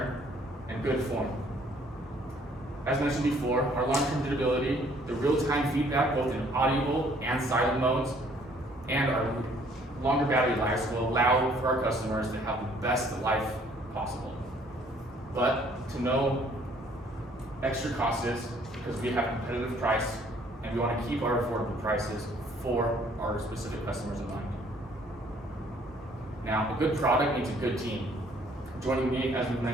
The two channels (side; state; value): both; normal; correlation 0.60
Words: and good form. As mentioned before, our long-term durability, the real-time feedback both in audible and silent modes, and our longer battery lives will allow for our customers to have the best life possible. But to no extra costs because we have competitive price and we want to keep our affordable prices for our specific customers in mind. Now, a good product needs a good team. Joining me, as we've